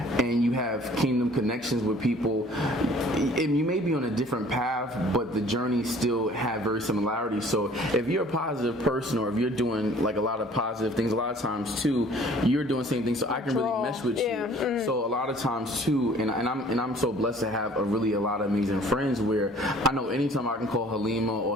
you have kingdom connections with people, and you may be on a different path, but the journey still have very similarities. So if you're a positive person, or if you're doing like a lot of positive things, a lot of times too, you're doing the same thing. So I can really mesh with you. So a lot of times too, and I'm so blessed to have a lot of amazing friends where I know anytime I can call Halimah or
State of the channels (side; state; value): both; normal; correlation 0.52